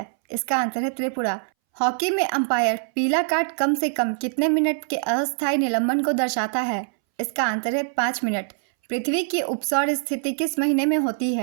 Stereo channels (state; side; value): silent; left; 62 dB below the other